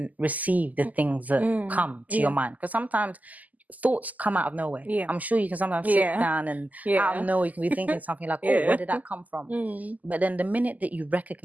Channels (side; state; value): left; late; 0.079 ms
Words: receive the things that come to your mind. Because sometimes thoughts come out of nowhere. I'm sure you can sometimes sit down and out of nowhere you can be thinking something like, oh, where did that come from? But then the minute that you